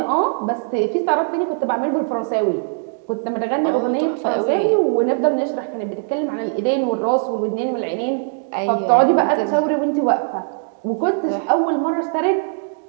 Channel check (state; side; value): silent; left; 66 dB below the other